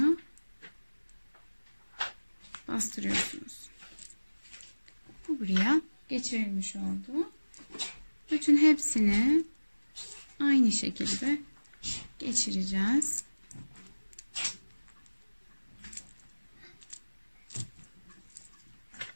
bastırıyorsunuz. Bu buraya geçirilmiş oldu. Bütün hepsini aynı şekilde geçireceğiz.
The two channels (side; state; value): both; inverted; correlation -1.00